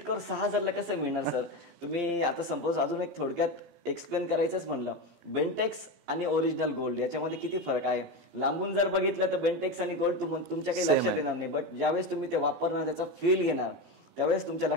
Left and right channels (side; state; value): left; late; 14 ms